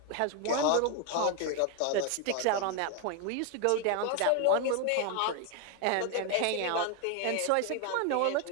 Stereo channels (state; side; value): different; both; correlation 0.01